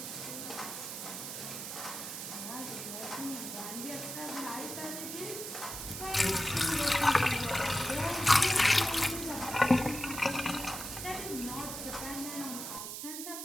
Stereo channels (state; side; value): noise; right; hiss, 7 dB below the sound